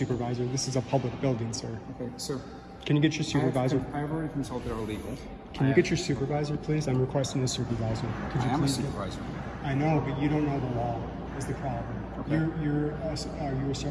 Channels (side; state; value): both; identical; correlation 1.00